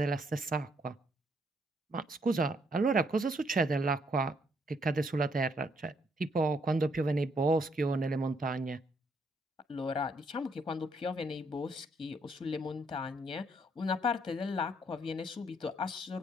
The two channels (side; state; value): both; normal; correlation 0.71